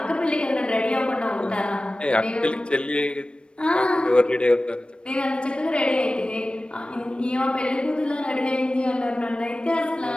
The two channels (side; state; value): right; late; 0.056 ms